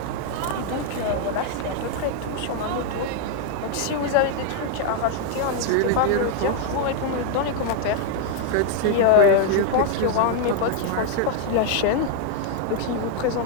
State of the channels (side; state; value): both; different; correlation 0.00